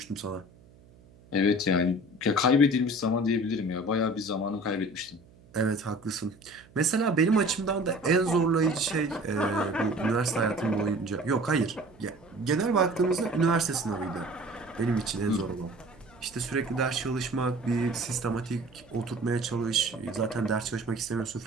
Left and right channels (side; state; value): right; noise; hum, 26 dB below the sound